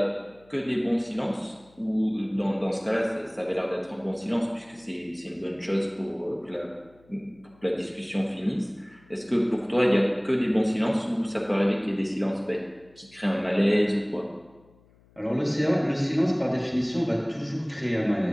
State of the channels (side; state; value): left; noise; hum, 29 dB below the sound